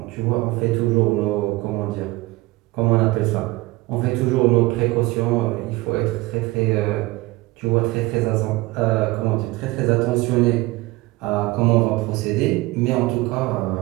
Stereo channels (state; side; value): quieter; left; 20.8 dB